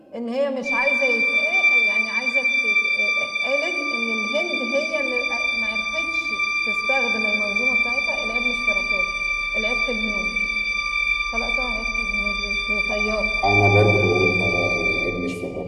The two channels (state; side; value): identical; both; correlation 1.00